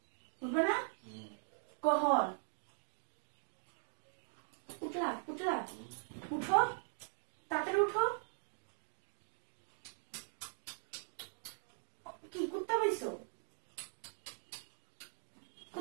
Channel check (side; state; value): left; silent; digital silence